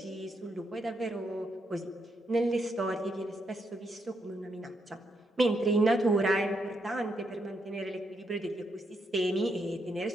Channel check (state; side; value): normal; both; correlation 0.79